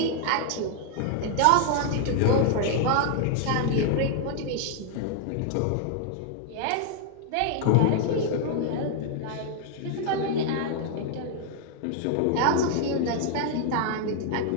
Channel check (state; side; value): different; both; correlation 0.00